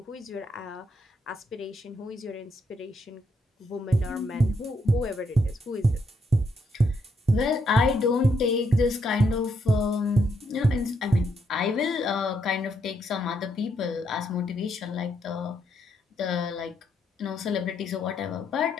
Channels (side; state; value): both; normal; correlation 0.76